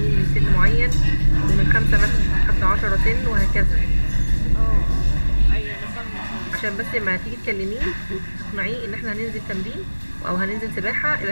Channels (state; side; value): inverted; both; correlation -1.00